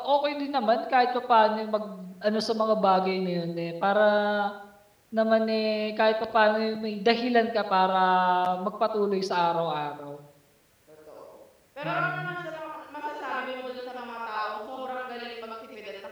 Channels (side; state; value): both; identical; correlation 1.00